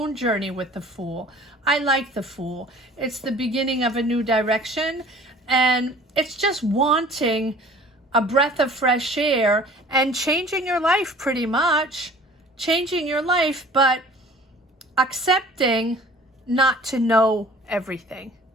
journey with the Fool. I like the Fool. It's the beginning of a new direction, and it's just wanting a breath of fresh air and changing your life, pretty much. Changing your life, but accepting not to know everything,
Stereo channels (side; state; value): both; normal; correlation 0.48